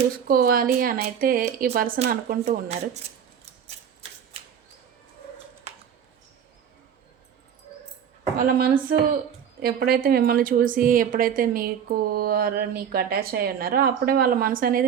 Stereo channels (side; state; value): left; quieter; 8.3 dB